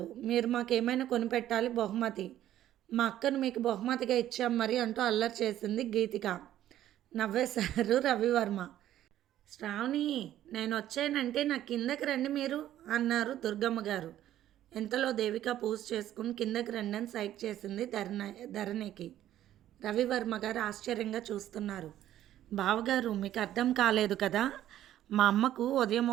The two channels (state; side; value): quieter; left; 12.5 dB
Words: మీరు మాకేమైనా కొనిపెట్టాలి బహుమతి. మా అక్కను మీకు బహుమతిగా ఇచ్చాం మరి అంటూ అల్లరి చేసింది గీతిక. నవ్వేశారు రవివర్మ. శ్రావణి నేనొచ్చానంటే నా కిందకి రండి మీరు అన్నారు దుర్గమ్మ గారు. ఇంతలో దేవిక పూజ చేసుకుని కిందకి రండి అని సైగ చేసింది ధరణికి. రవివర్మ గారు ఆశ్చర్యంగా చూస్తున్నారు. బావగారు మీకు అర్థం కాలేదు కదా, మా అమ్మకు ఉదయం